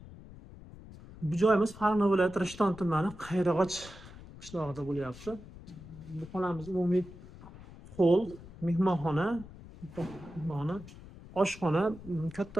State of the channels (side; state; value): left; noise; rumble, 17 dB below the sound